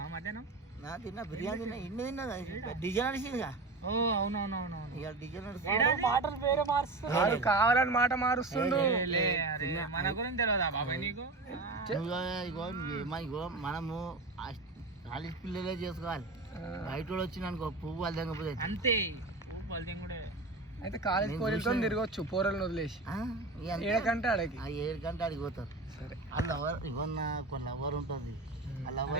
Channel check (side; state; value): left; quieter; 3.2 dB